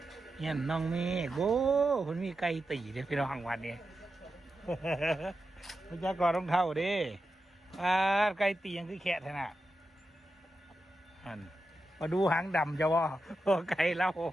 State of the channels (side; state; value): both; normal; correlation 0.89